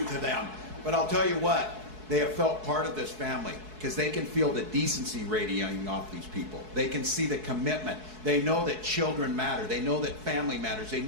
to them. But I'll tell you what, they have felt part of this family because they can feel the decency radiating off these people. They can see the commitment. They know that children matter. They know that family matters. They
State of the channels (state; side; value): late; left; 4.7 ms